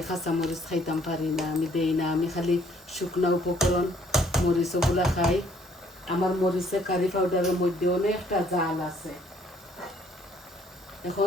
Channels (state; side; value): normal; both; correlation 0.63